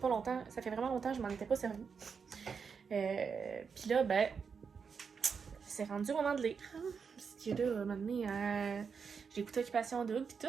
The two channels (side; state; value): left; quieter; 5.9 dB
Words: longtemps. Ça fait vraiment longtemps que je m'en étais pas servi. Puis là, ben, c'est rendu au moment de lire. Parce que là, à un moment donné, j'ai écouté Occupation Double pis tout.